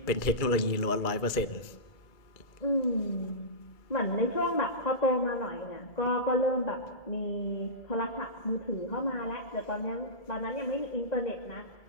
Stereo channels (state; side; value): late; right; 2.3 ms